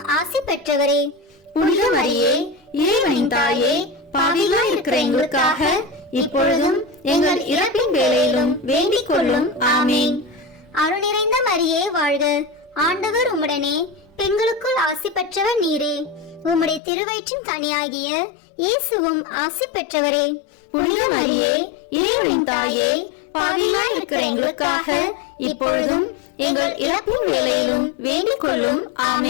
ஆசி பெற்றவரே. புனித மரியே, இறைவனின் தாயே, பாவிகளாய் இருக்கிற எங்களுக்காக இப்பொழுதும் எங்கள் இறப்பின் வேளையிலும் வேண்டிக் கொள்ளும். ஆமேன். அருள் நிறைந்த மரியே வாழ்க. ஆண்டவர் உம்முடனே, பெண்களுக்குள் ஆசி பெற்றவர் நீரே. உம்முடைய திருவயிற்றின் கனியாகிய இயேசுவும் ஆசி பெற்றவரே. புனித மரியே, இறைவனின் தாயே, பாவிகளாய் இருக்கிற எங்களுக்காக இப்பொழுதும் எங்கள் இறப்பின் வேளையிலும் வேண்டிக் கொள்ளும்.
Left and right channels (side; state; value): right; drops out; at 16.8 s